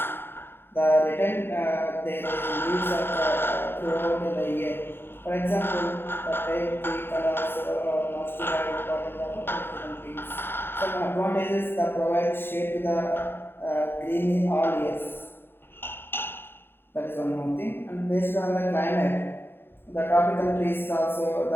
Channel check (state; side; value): late; right; 0.11 ms